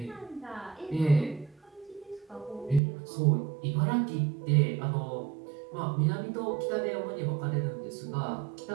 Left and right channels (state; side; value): drops out; left; at 2.8 s